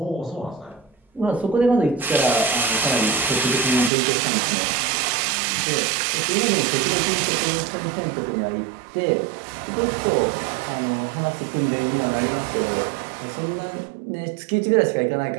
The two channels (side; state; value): left; drops out; at 3.9 s